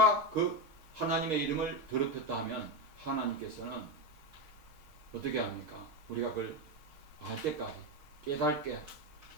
그 하나님의 이름을 더럽혔다 하면 하나님께서는 어떻게 합니까? 우리가 그걸 알 때까지 깨닫게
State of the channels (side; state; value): left; late; 6.4 ms